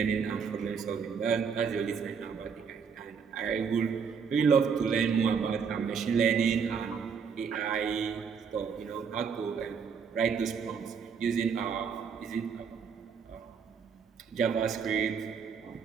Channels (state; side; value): quieter; left; 6.3 dB